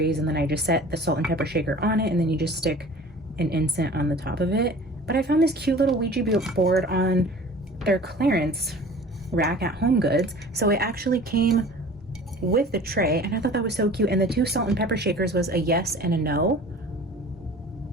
and then I just set the salt and pepper shaker on it, and then you just stick an incense on the top of it. But I found this cute little Ouija board on their clearance rack at Home Goods. So it actually came with the tray, and I thought that was so cute. And the 2 salt and pepper shakers was a yes and a no.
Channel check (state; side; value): normal; both; correlation 0.43